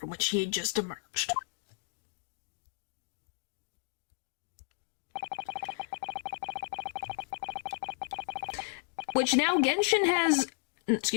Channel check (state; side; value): silent; right; 55 dB below the other